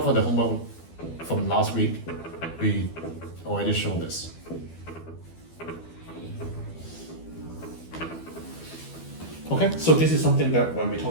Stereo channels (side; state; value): right; late; 12 ms